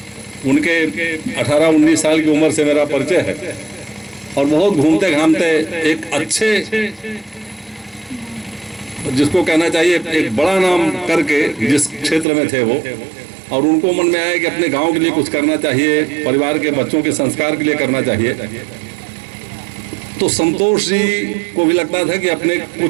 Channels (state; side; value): drops out; left; at 12.2 s